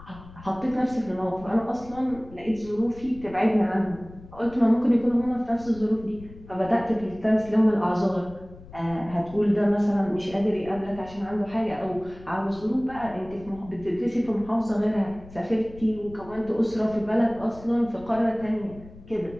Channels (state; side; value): noise; left; rumble, 19 dB below the sound